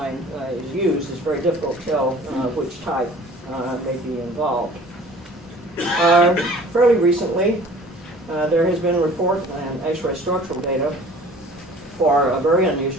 is used, it's very difficult to tell which type may be involved. Fairly recently, there has been a report and X-ray structural data for a very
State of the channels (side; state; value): both; normal; correlation 0.48